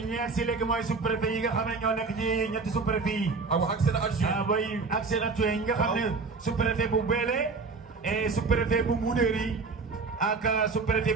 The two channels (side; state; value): left; quieter; 4.3 dB